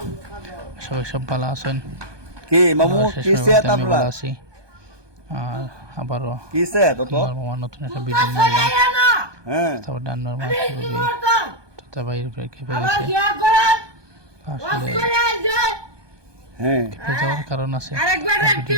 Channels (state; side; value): late; left; 1.2 ms